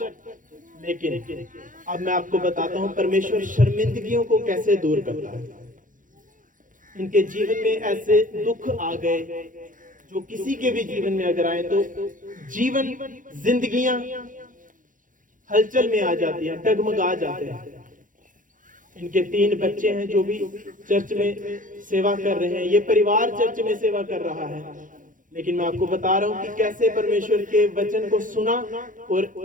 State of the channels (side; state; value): left; late; 0.38 ms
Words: लेकिन अब मैं आपको बताता हूं परमेश्वर शर्मिंदगियों को कैसे दूर करता है। इनके जीवन में ऐसे दुख आ गए जो किसी के भी जीवन में अगर आए तो जीवन, जिंदगियां हलचल में आ जाती हैं, डगमगा जाते हैं। इनके 3 बच्चे हैं जो भी चर्च में सेवा कर रहे हैं, ये परिवार चर्च में सेवा कर रहा है। लेकिन मैं आपको बता रहा हूं कि कैसे परमेश्वर के वचन को सुना और